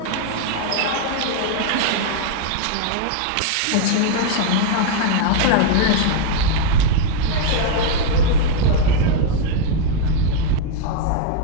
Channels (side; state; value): both; different; correlation 0.00